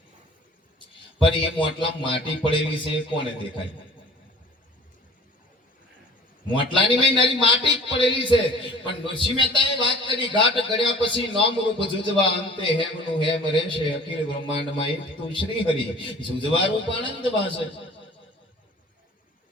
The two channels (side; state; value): both; normal; correlation 0.47